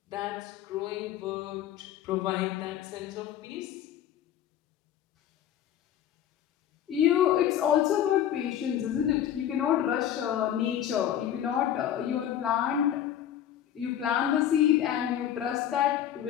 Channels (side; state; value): right; quieter; 10.5 dB